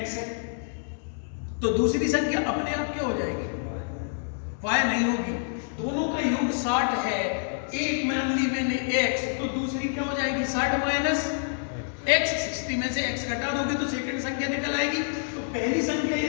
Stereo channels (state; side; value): silent; right; 60 dB below the other